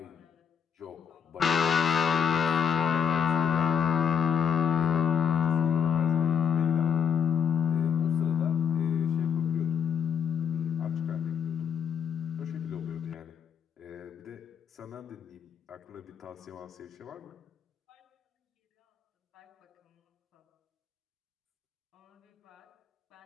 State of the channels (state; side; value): quieter; right; 7.6 dB